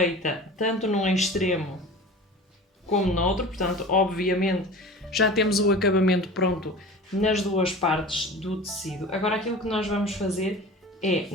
tanto num extremo como no outro, portanto obviamente já temos o acabamento pronto nas duas partes do tecido. Agora aquilo que nós vamos fazer é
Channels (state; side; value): normal; both; correlation 0.37